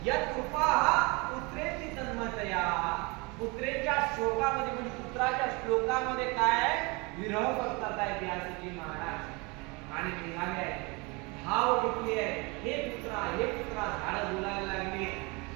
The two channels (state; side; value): quieter; left; 27.7 dB